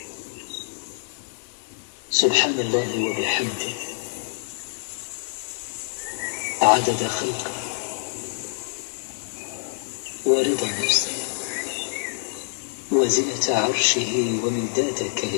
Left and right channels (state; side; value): silent; right; digital silence